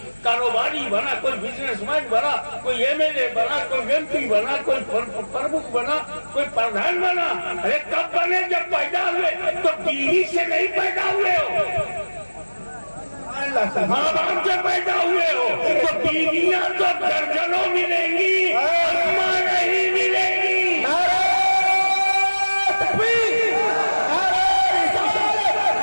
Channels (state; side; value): inverted; both; correlation -1.00